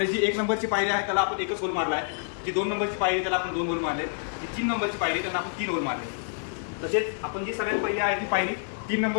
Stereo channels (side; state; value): right; silent; 60 dB below the other